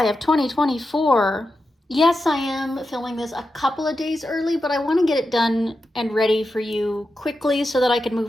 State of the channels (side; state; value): both; normal; correlation 0.89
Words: of 2024, yes, I am filming this a couple of days early, but I want to get it done and ready for you quickly so that I can